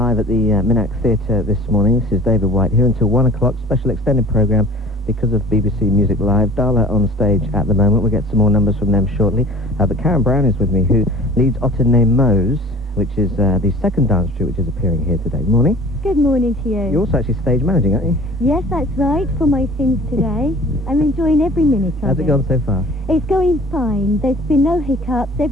at the Minack Theatre this morning. This is David White here until 1 o'clock. Special extended programme because of BBC Music Live. Dala on stage at the moment. We'll get some more numbers from them shortly. But Karen Brown is with me, who leads Otter Ne Moyes, which is the second dance troupe which is appearing here today. Morning. Good morning to you. You're also actually stage managing, aren't you? Yes, that's right, for my sins today. I'm enjoying every minute of it. How's it gone so far? It's going fine. There's been no hiccups.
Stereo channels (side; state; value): both; normal; correlation 0.44